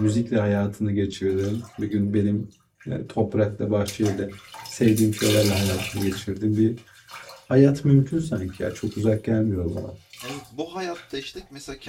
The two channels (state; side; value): identical; both; correlation 1.00